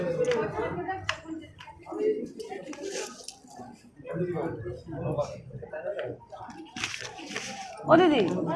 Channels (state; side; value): identical; both; correlation 1.00